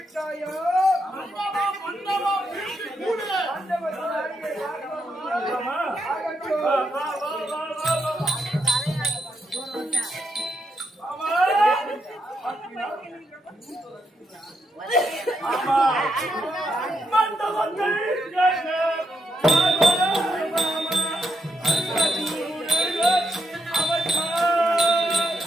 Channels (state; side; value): normal; both; correlation 0.80